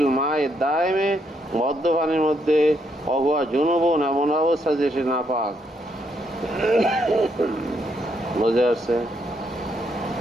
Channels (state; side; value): normal; both; correlation 0.75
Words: মায়ে দায়েমে মদ্য পানির মধ্যে অহুয়া জুনুবন এমন অবস্থা যে সে নাপাক। বুঝে আসছে?